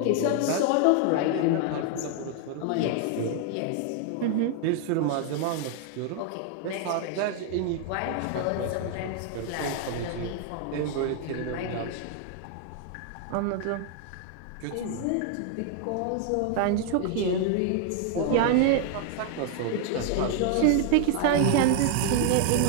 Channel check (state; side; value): different; both; correlation 0.00